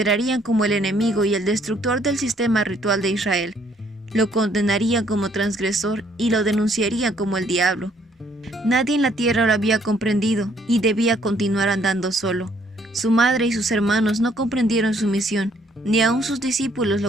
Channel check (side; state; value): both; normal; correlation 0.65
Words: como el enemigo y el destructor del sistema ritual de Israel. Lo condenarían como transgresor y lo denunciarían como el diablo. Nadie en la tierra lo había comprendido y debía continuar andando solo. Su madre y sus hermanos no comprendieron su misión, ni aun sus discípulos